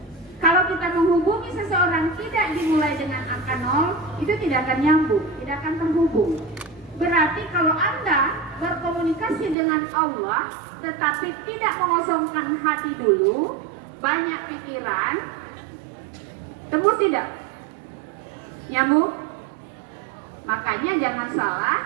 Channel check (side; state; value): left; drops out; at 9.6 s